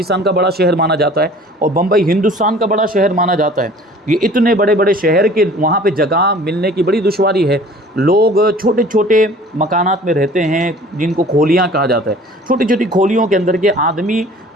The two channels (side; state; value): both; normal; correlation 0.48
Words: کا بڑا شہر مانا جاتا ہے اور بمبئی ہندوستان کا بڑا شہر مانا جاتا ہے، یہ اتنے بڑے بڑے شہر کے وہاں پہ جگہ ملنے کی بڑی دشواری ہے۔ لوگ چھوٹے چھوٹے مکانات میں رہتے ہیں جن کو کھولیاں کہا جاتا ہے، چھوٹی چھوٹی کھولیوں کے اندر کے آدمی